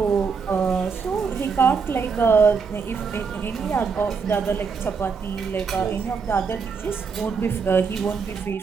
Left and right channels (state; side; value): quieter; left; 5.5 dB